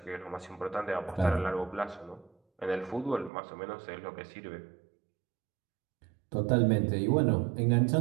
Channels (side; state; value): left; drops out; at 3.3 s